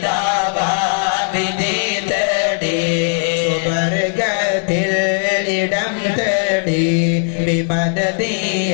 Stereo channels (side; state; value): right; silent; 67 dB below the other